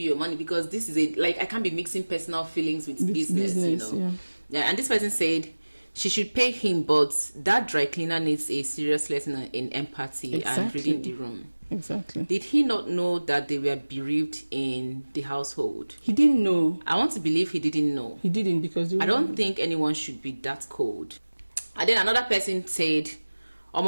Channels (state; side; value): inverted; both; correlation -1.00